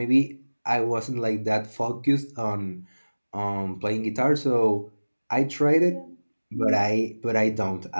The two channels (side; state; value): both; inverted; correlation -1.00